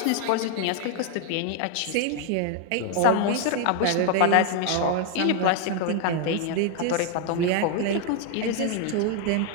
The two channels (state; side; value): different; both; correlation 0.00